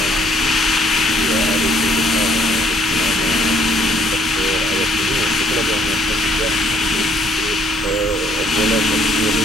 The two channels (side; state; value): both; normal; correlation 0.64